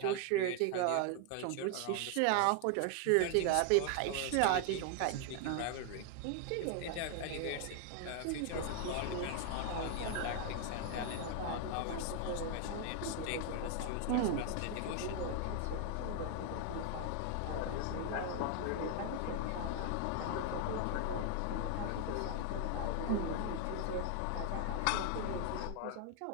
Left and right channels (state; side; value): different; both; correlation 0.00